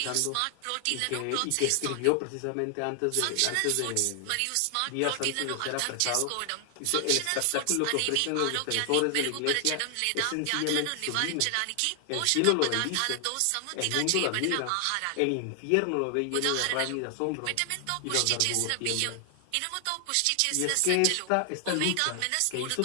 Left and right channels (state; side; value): different; both; correlation 0.00